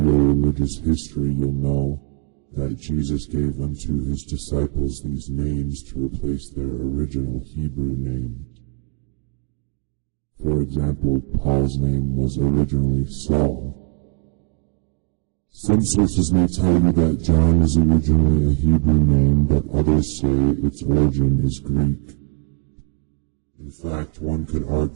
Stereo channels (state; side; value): quieter; left; 36.0 dB